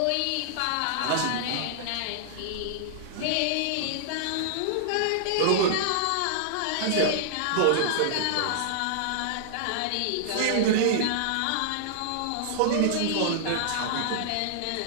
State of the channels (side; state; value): both; different; correlation -0.01